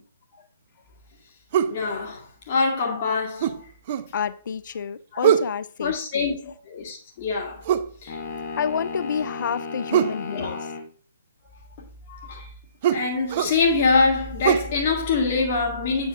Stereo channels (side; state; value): both; inverted; correlation -0.57